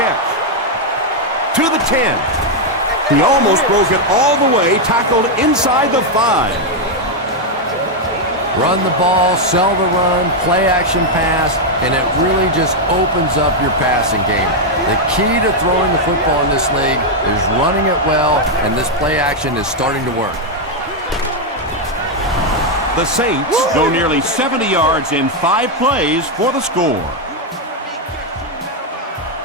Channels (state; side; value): normal; both; correlation 0.01